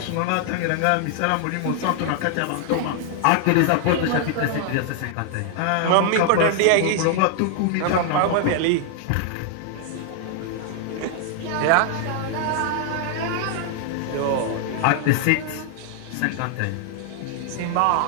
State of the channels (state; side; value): different; both; correlation 0.00